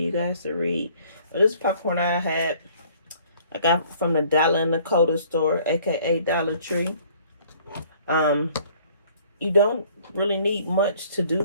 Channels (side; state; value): both; inverted; correlation -0.57